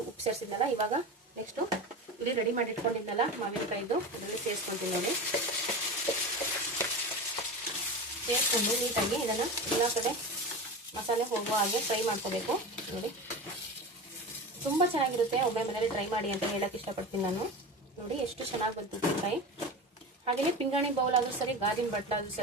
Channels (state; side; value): normal; both; correlation 0.27